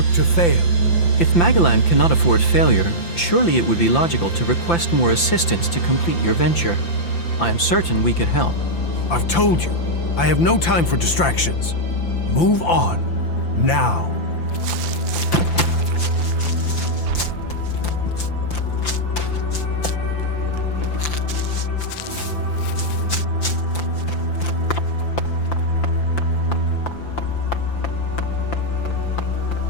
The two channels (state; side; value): late; right; 5.8 ms